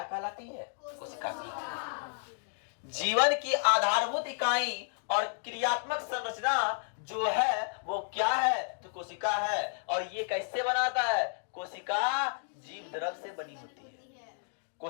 कहलाती है, कोशिका की। जीवन की आधारभूत इकाई और क्रियात्मक संरचना जो है वो क्या है, तो कोशिका है। और ये कैसे बनाता है, कोशिका जीव द्रव से बनी होती है।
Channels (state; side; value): silent; right; digital silence